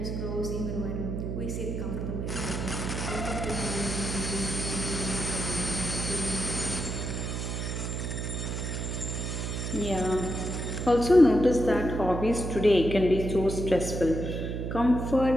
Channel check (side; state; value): right; noise; hum, 3 dB below the sound